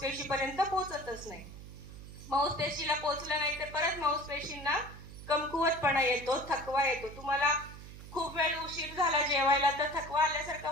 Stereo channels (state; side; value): noise; right; hum, 14 dB below the sound